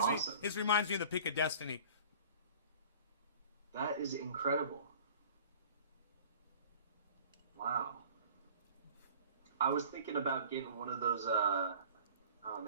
awesome. me. This reminds me of the Pick of Destiny. That is incredible. Wow. I was thinking about getting one of those, oh,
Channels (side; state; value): both; inverted; correlation -0.46